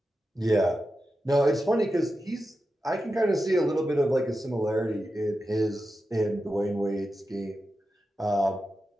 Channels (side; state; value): both; normal; correlation 0.91